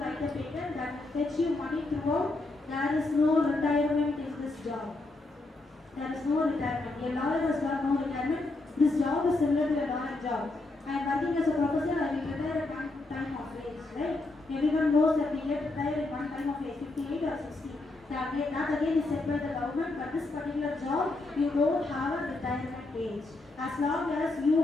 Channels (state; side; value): quieter; right; 3.1 dB